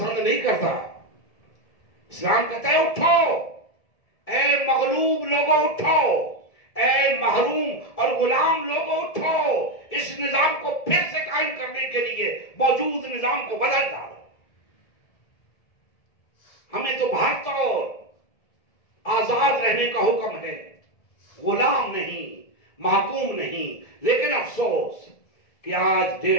نہیں کرتا۔ اسلام کہتا ہے اٹھو اے مغلوب لوگوں، اٹھو اے محروم اور غلام لوگوں، اٹھو، اس نظام کو پھر سے قائم کرنے کے لیے موجود نظام کو بدل ڈالو۔ ہمیں تو بھارت اور آزاد رہنے کا حکم ہے، غلام نہیں، محکوم نہیں۔ لیکن افسوس کہ آج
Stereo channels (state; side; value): late; right; 1.7 ms